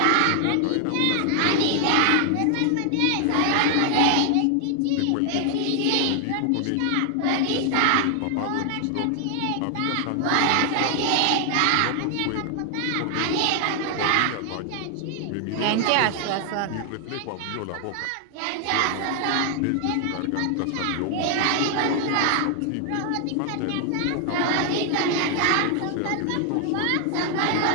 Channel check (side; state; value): both; different; correlation 0.00